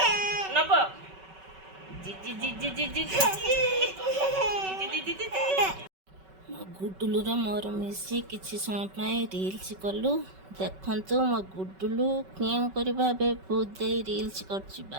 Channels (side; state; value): left; late; 5.3 ms